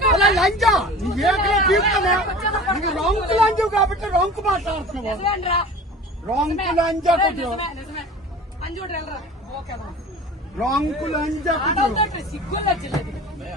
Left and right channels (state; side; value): normal; both; correlation 0.40